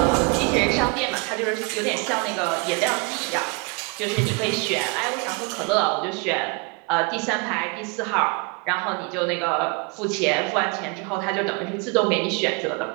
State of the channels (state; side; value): quieter; left; 32.2 dB